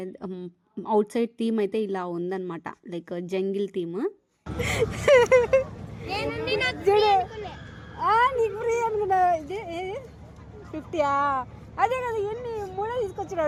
అవుట్ సైడ్ థీమ్ అయితే ఇలా ఉందన్నమాట, లైక్ జంగిల్ థీమ్. అదే కదా, ఎన్ని మూడో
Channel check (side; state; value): both; identical; correlation 1.00